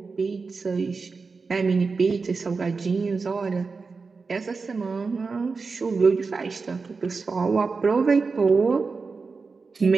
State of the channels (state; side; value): quieter; left; 4.5 dB